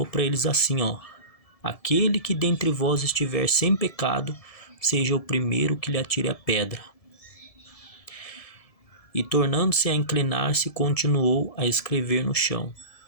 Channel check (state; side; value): late; right; 1.7 ms